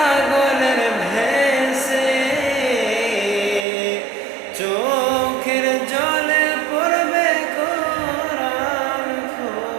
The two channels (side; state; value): left; drops out; at 3.7 s